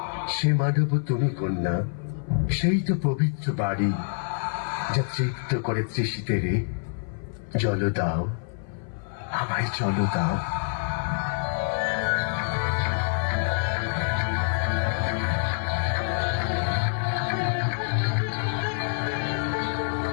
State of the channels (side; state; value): right; silent; 56 dB below the other